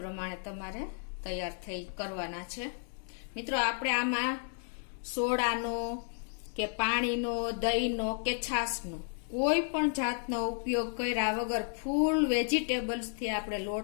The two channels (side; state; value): right; silent; 56 dB below the other